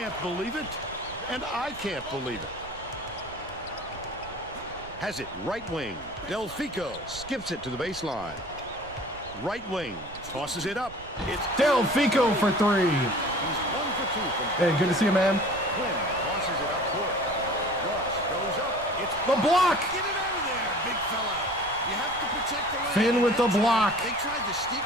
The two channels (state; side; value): noise; right; rumble, 18 dB below the sound